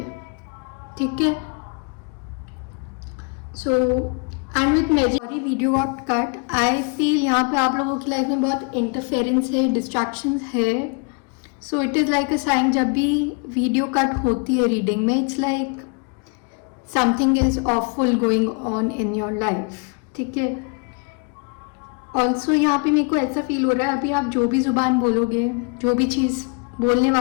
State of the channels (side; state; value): right; quieter; 34.3 dB